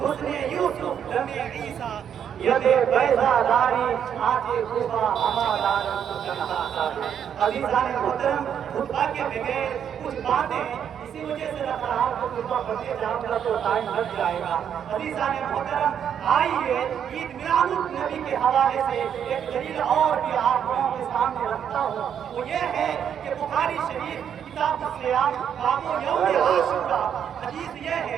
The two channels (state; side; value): quieter; left; 8.6 dB